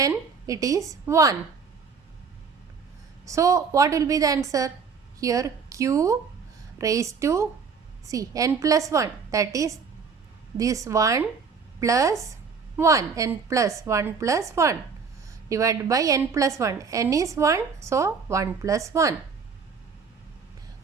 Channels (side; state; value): left; quieter; 5.6 dB